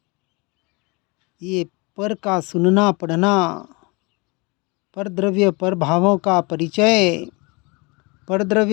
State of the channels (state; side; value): quieter; right; 28.1 dB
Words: ये पर का सुनना पढ़ना, परद्रव्य परभावों का परिचय,